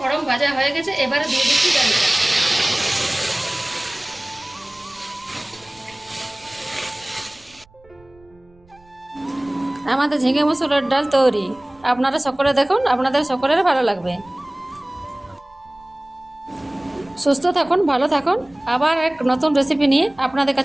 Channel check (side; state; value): right; noise; rumble, 29 dB below the sound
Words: ভাজা হয়ে গেছে, এবারে দিয়ে দিচ্ছি ডালটা। আমাদের ঝিঙে মসুরের ডাল তৈরি। আপনারা সকলে দেখুন, আপনাদের সকলের ভালো লাগবে। সুস্থ থাকুন, ভালো থাকুন। আবার এক নতুন রেসিপি নিয়ে আপনাদের